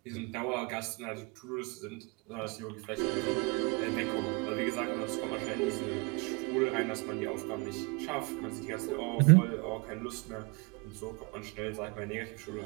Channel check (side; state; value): left; quieter; 30.1 dB